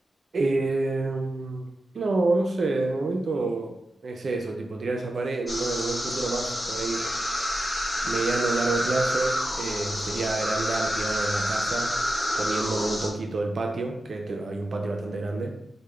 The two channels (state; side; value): normal; both; correlation 0.90